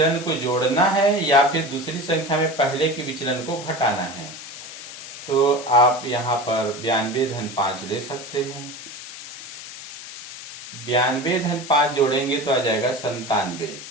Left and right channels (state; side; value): noise; left; hiss, 12 dB below the sound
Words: को जोड़ना है या फिर दूसरी संख्या में पहले के विचलन को घटाना है। तो आप यहाँ पर 92 धन 5 ले सकते हैं। 92 धन 5 जोड़ेंगे तो आ जाएगा 97